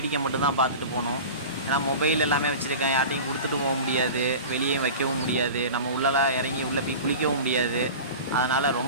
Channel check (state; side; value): inverted; both; correlation -0.34